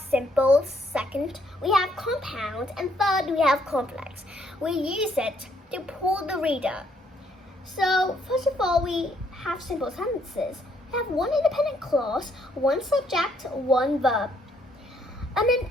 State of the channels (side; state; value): both; normal; correlation 0.69